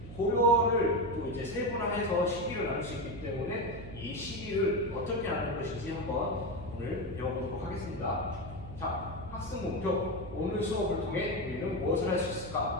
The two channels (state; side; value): noise; right; hum, 12 dB below the sound